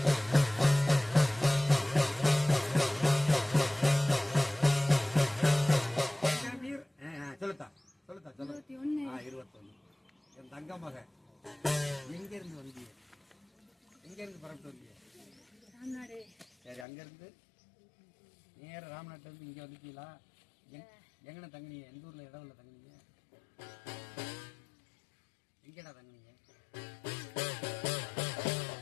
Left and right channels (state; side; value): drops out; right; at 16.9 s